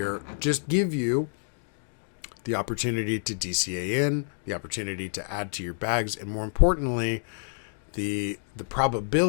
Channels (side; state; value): right; silent; digital silence